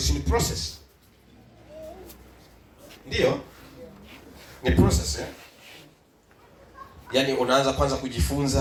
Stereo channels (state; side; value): identical; both; correlation 1.00